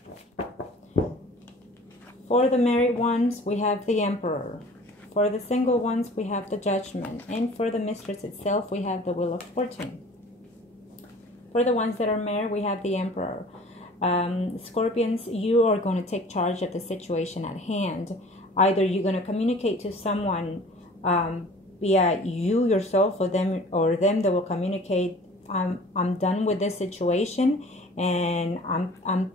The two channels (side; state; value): both; normal; correlation 0.47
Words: For the married ones, we have the Emperor. For the single ones, we have the Judgment. And for the mistress itself, we have the Wheel of Fortune. For the ones that are married, we have the Emperor. Scorpions, you are going to take charge of the situation at hand. Either you're going to communicate to someone via you yourself or them that will communicate, I'm done with this situation and I'm